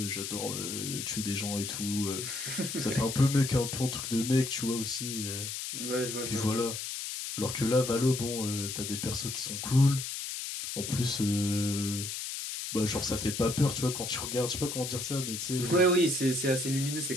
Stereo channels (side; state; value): left; noise; hiss, 5 dB below the sound